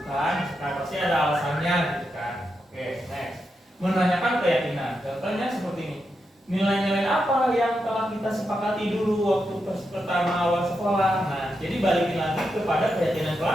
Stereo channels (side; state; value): both; normal; correlation 0.85